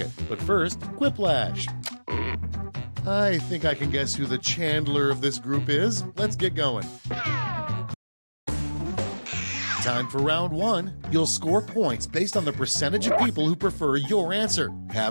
But first, Quiplash. I think I can guess who the Chandler of this group is. Let's get going. Time for round one. You'll score points based on the percentage of people who prefer your answer.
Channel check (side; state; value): both; inverted; correlation -1.00